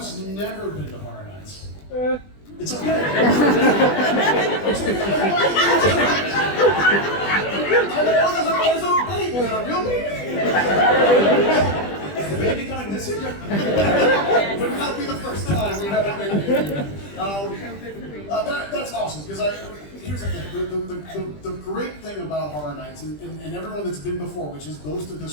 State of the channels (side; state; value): right; late; 20 ms